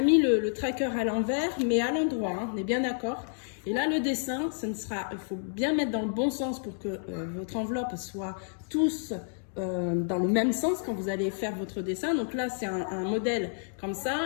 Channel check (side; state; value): right; silent; digital silence